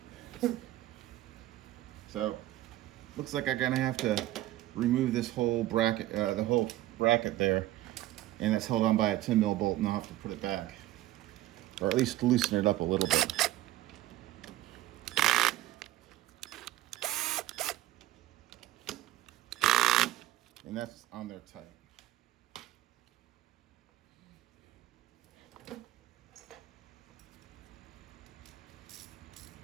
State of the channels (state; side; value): quieter; left; 15.1 dB